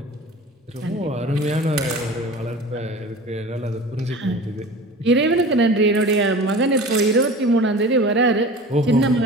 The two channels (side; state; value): both; normal; correlation 0.37